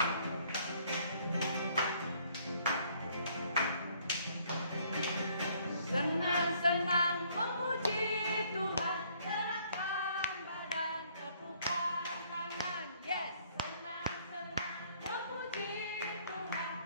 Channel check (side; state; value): both; inverted; correlation -0.63